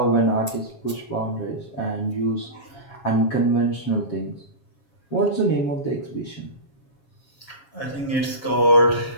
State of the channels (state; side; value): late; right; 7.3 ms